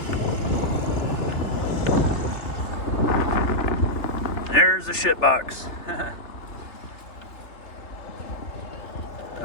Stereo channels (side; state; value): right; late; 3.2 ms